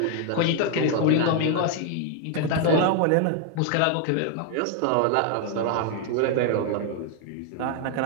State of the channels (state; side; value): different; both; correlation 0.00